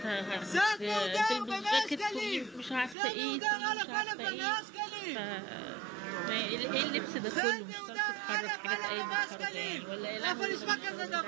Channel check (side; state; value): left; drops out; at 3.0 s